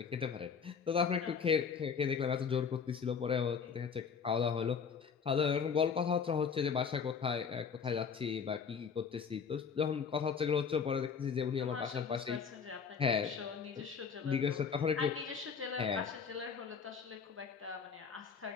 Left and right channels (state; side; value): quieter; right; 6.3 dB